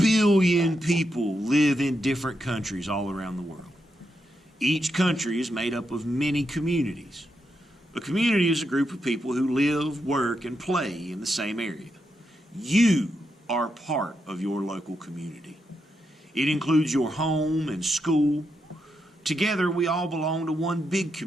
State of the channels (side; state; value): both; normal; correlation 0.83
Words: people live in different countries all around the world. Each country is made up of many communities. A community is a group of people who live, work, and play in the same area. You are part of your local community. It includes your home and school. Together, we all belong to one big